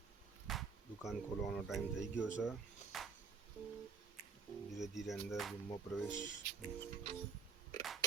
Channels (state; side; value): quieter; left; 5.3 dB